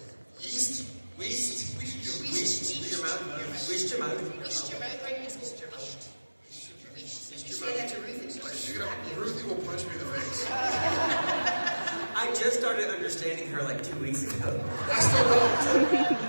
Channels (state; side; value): inverted; both; correlation -1.00